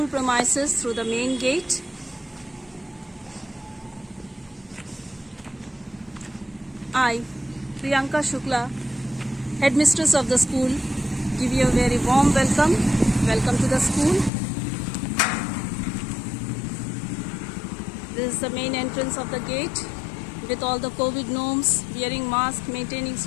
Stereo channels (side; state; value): right; drops out; at 14.3 s